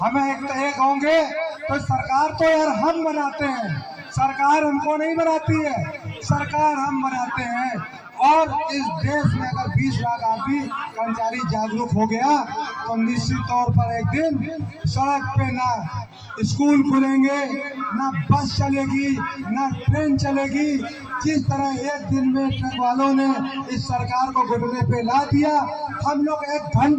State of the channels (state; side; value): identical; both; correlation 1.00